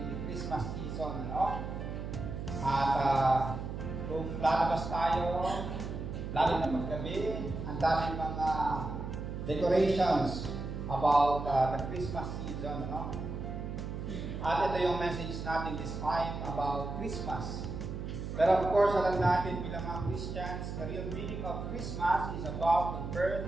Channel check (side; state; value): right; noise; hum, 6 dB below the sound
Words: the Christmas season, ano? At kung lalabas tayo, lalo na paggabi, ang daming mga decorations about the Christmas season, ano? At ito yung message natin this time about Christmas. Pero of course, alam natin bilang mga Christians, the real meaning of Christmas is about the birth